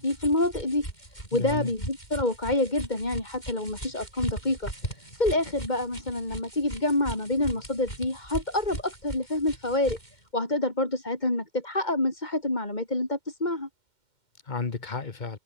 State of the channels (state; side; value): late; right; 2.1 ms